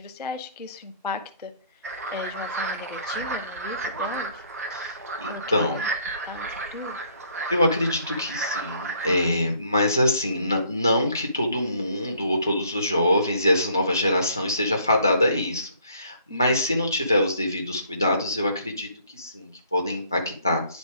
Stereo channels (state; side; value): inverted; both; correlation -0.63